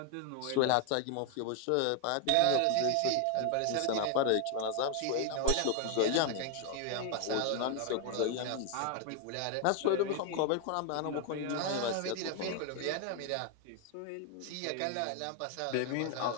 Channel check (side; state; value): both; different; correlation 0.00